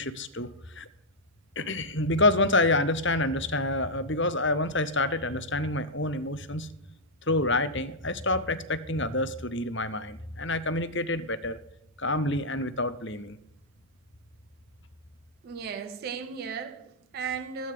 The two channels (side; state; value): both; normal; correlation -0.07